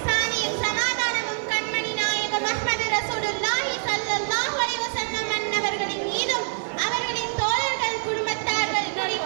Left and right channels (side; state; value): left; silent; 55 dB below the other